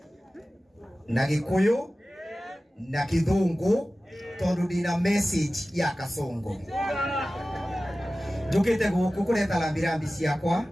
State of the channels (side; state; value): both; normal; correlation 0.96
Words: na Gikuyu na Kithungu tondu ndina message ya Kasongo. Njukite guku kureta lambirambi ciakwa